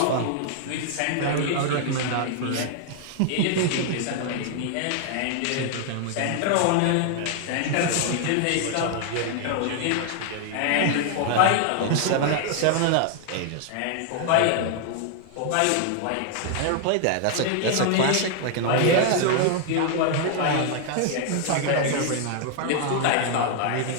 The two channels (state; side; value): different; both; correlation 0.00